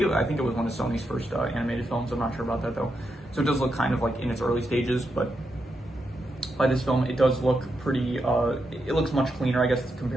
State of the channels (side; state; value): both; normal; correlation 0.84